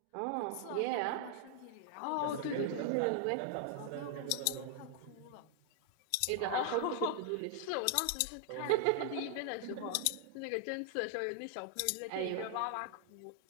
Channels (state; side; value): different; both; correlation 0.00